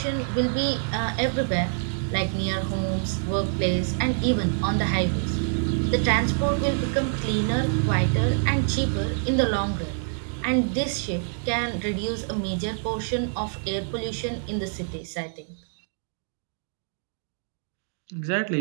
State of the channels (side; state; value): left; silent; digital silence